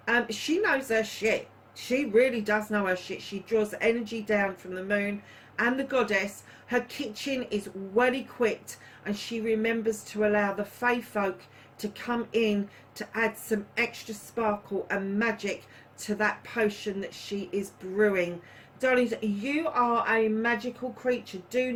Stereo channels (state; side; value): identical; both; correlation 1.00